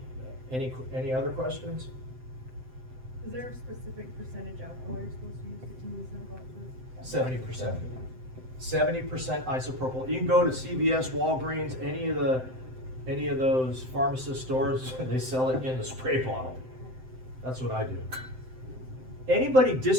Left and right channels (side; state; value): left; late; 7.8 ms